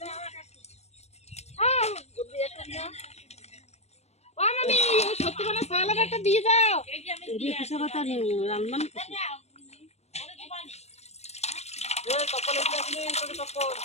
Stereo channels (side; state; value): right; late; 0.31 ms